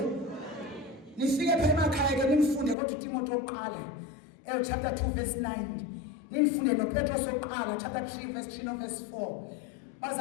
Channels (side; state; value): right; drops out; at 2.8 s